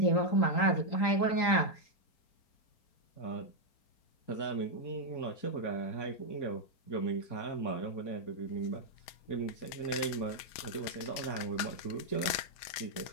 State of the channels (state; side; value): late; right; 5.0 ms